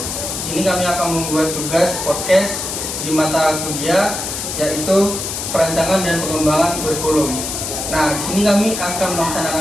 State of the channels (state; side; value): noise; left; hiss, 4 dB below the sound